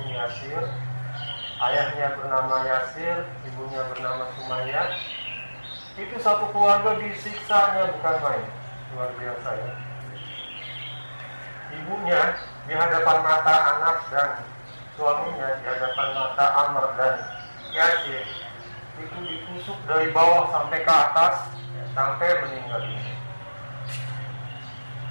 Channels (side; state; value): both; inverted; correlation -1.00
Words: Yasir. Ayahnya bernama Yasir, ibunya bernama Sumayyah. Itu satu keluarga disiksanya bukan main, luar biasa ya. Ibunya di hadapan mata anak dan suaminya di hadapan mata Ammar dan Yasir itu ditusuk dari bawah sampai ke atas sampai meninggal dunia.